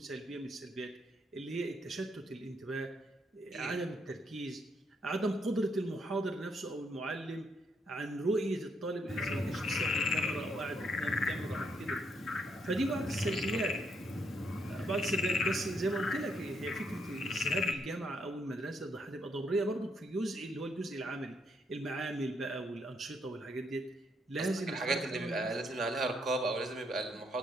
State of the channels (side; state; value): both; normal; correlation 0.74